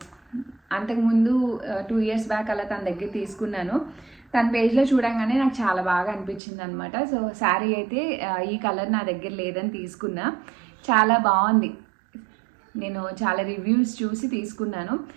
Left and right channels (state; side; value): drops out; left; at 6.4 s